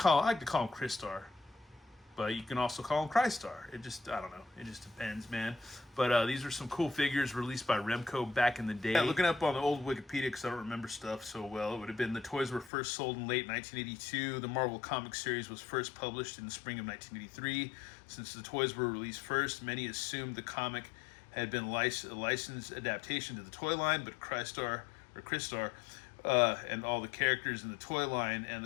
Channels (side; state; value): right; drops out; at 12.7 s